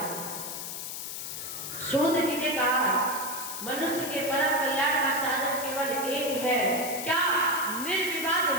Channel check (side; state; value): left; noise; hiss, 6 dB below the sound